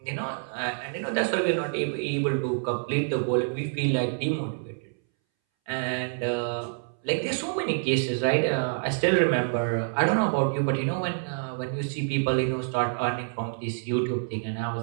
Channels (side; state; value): left; silent; 60 dB below the other